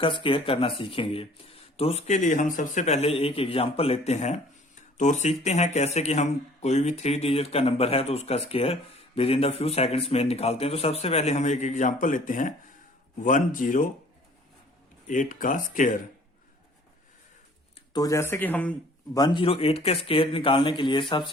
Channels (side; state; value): both; normal; correlation 0.53